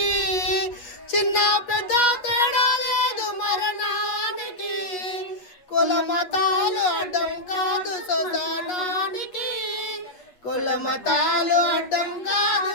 చిన్న పెద్ద తేడా లేదు మరణానికి. కుల మతాలు అడ్డం కాదు శ్మశానానికి, కుల మతాలు అడ్డం కాదు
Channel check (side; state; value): right; late; 8.3 ms